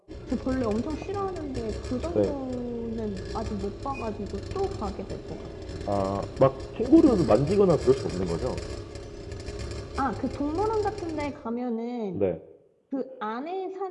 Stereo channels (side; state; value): both; identical; correlation 1.00